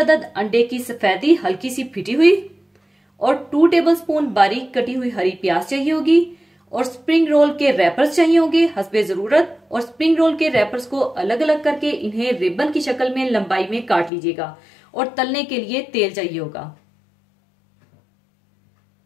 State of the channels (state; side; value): drops out; right; at 14.1 s